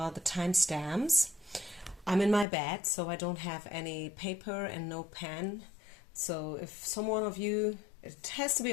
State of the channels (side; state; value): right; drops out; at 2.5 s